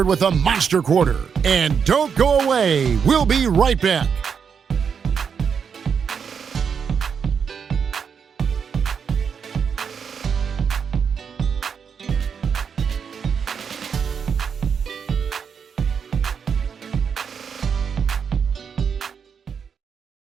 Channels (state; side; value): quieter; left; 6.7 dB